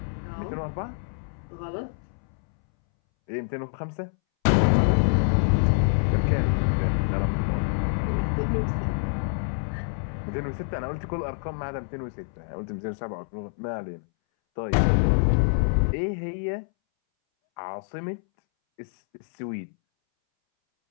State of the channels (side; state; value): right; silent; 61 dB below the other